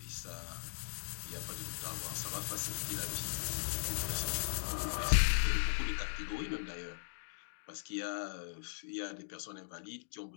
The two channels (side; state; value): right; silent; digital silence